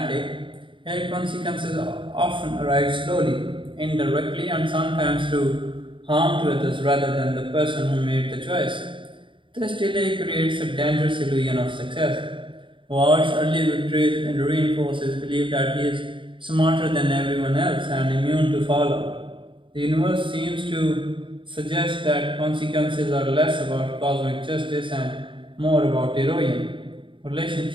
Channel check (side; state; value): left; late; 0.24 ms